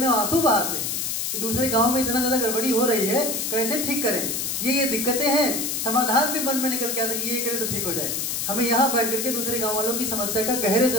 आंसू बहाते हैं कि दूसरे गांव में इतना ज्यादा गड़बड़ी हो रही है, कैसे ठीक करें। ये दिक्कतें हैं, समाधान भी मन में निकल के आता है कि ये करे तो ठीक हो जाए। हमें यहाँ बैठ करके दूसरे गांव वालों की समस्या का गहरे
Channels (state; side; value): noise; left; hiss, 1 dB below the sound